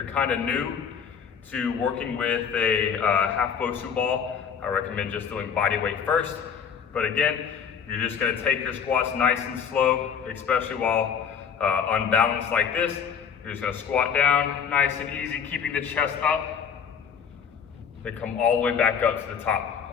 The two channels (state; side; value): quieter; right; 7.3 dB